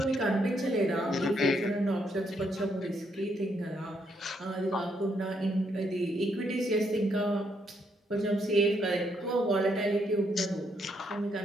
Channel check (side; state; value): both; normal; correlation 0.75